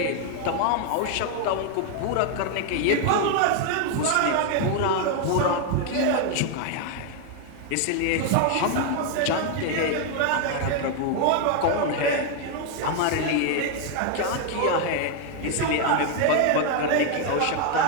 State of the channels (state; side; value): different; both; correlation 0.01